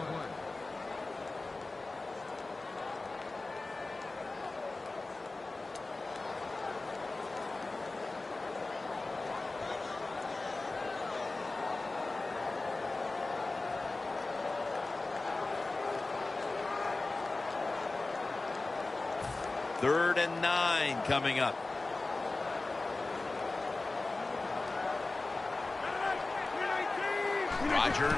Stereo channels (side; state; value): right; quieter; 3.3 dB